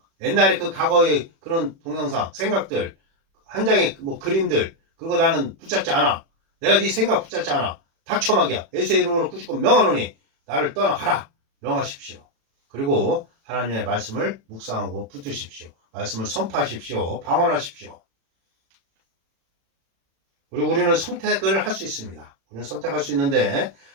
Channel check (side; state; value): left; late; 36 ms